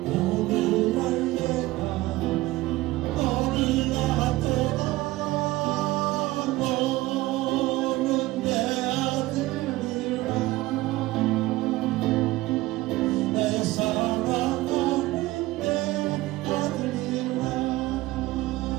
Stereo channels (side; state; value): left; quieter; 18.4 dB